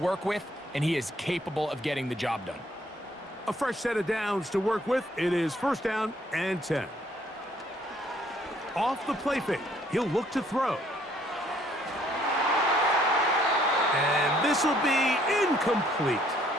with, and he is capable of getting the job done. A fresh set of downs to work with. It is 1st down and 10. Off the play fake, he'll look to throw. And this will be incomplete.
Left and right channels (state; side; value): normal; both; correlation 0.64